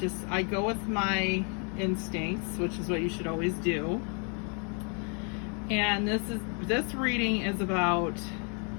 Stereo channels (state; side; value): quieter; right; 38.8 dB